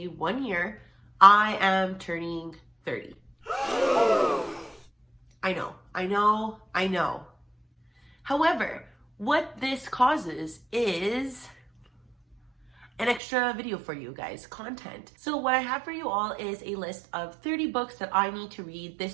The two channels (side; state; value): left; drops out; at 13.2 s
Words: 1 year, I am turning 30. I know. However, what this causes is an extra video for you guys, content. So what I have for you all is a list of 30 books that I need to read